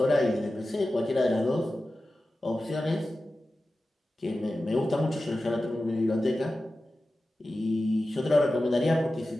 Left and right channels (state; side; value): normal; both; correlation 0.94